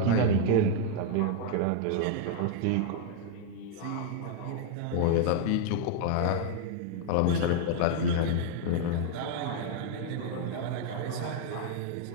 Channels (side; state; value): both; different; correlation 0.00